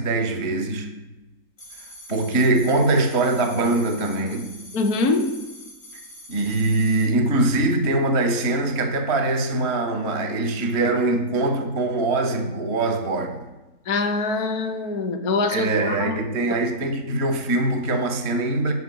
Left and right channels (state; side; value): late; right; 3.2 ms